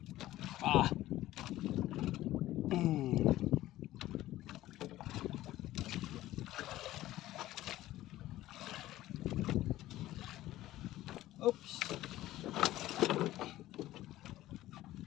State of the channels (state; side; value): quieter; right; 15.3 dB